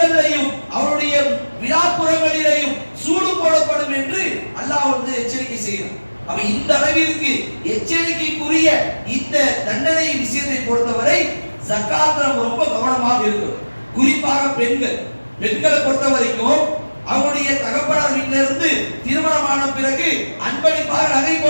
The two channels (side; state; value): both; inverted; correlation -1.00